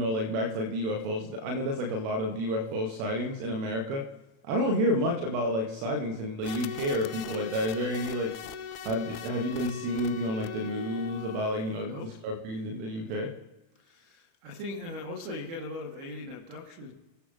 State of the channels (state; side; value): late; left; 36 ms